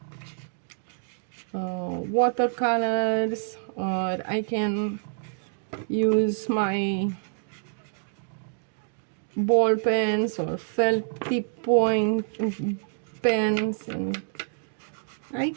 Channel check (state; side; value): silent; left; digital silence